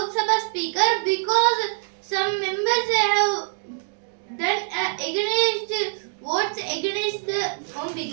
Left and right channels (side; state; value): left; silent; 62 dB below the other